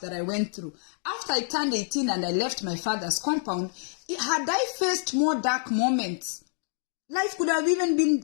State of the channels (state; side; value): silent; right; 60 dB below the other